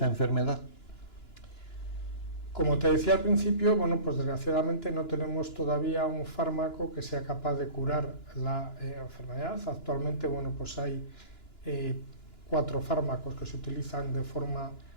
enfermedad? Como te decía al principio, bueno, pues desgraciadamente no tenemos todavía un fármaco que sea capaz de curar la enfermedad. Actualmente, bueno, pues hay 4 fármacos que se utilizan de forma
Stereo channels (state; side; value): late; right; 2.9 ms